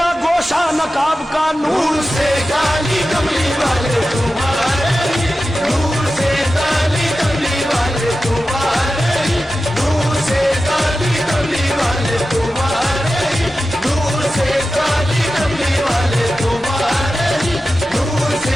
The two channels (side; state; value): both; normal; correlation 0.93